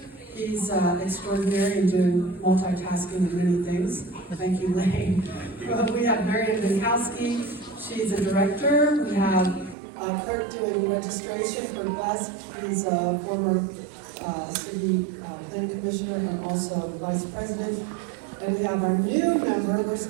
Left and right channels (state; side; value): drops out; left; at 9.8 s